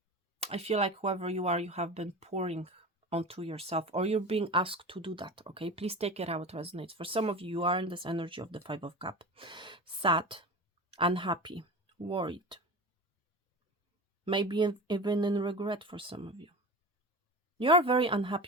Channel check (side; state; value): both; normal; correlation 0.30